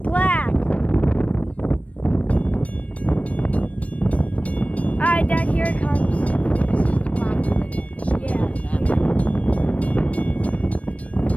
Alright, Dad, here it comes. This is the black and red one. Yeah.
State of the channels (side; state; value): right; late; 0.065 ms